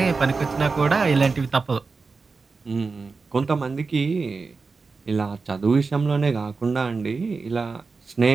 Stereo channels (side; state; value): left; quieter; 4.4 dB